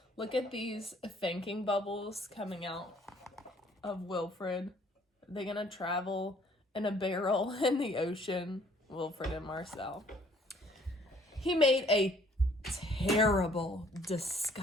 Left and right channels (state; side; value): normal; both; correlation 0.60